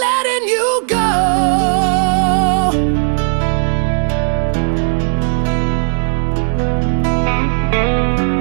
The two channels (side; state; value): left; silent; digital silence